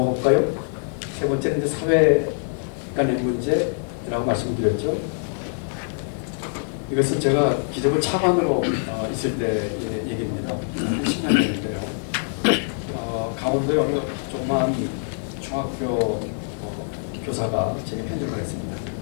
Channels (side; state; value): right; silent; digital silence